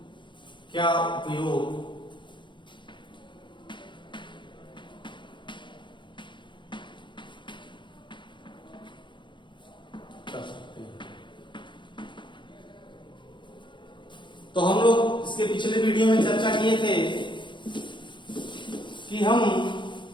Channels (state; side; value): late; right; 0.23 ms